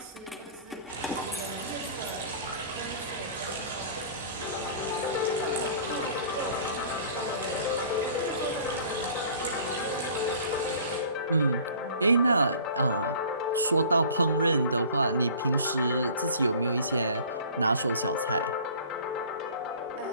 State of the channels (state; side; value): inverted; both; correlation -0.47